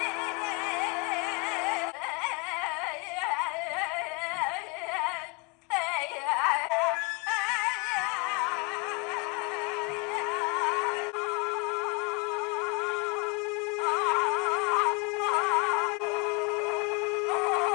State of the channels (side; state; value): right; quieter; 31.3 dB